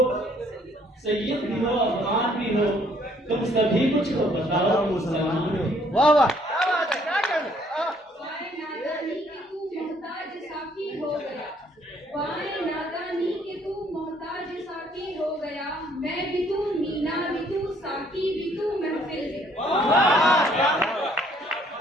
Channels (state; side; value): normal; both; correlation 0.63